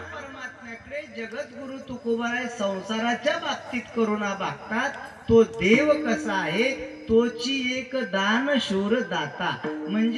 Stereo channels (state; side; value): identical; both; correlation 1.00